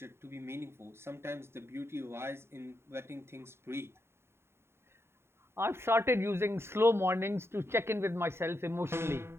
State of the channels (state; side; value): late; left; 0.12 ms